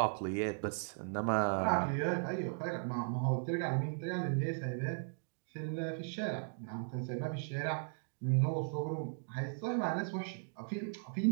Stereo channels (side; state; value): left; silent; digital silence